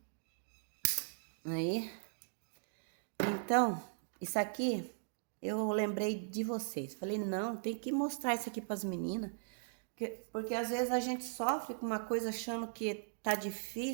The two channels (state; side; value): silent; left; digital silence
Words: Aí. Então, isso aqui, eu lembrei de vocês. Falei, não, tem que mostrar isso aqui pras meninas. Porque às vezes a gente sofre com uma coisa achando que tá